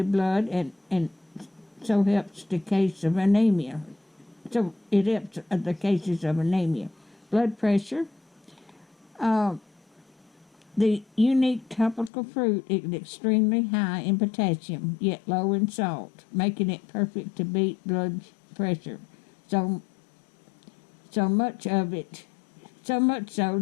blood and so helps the case of anemia. So it helps the cases of anemia. Blood pressure. The unique tropical fruit is extremely high in potassium, yet low in salt, making it perfect to beat blood pressure. So much so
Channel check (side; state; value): right; drops out; at 12.1 s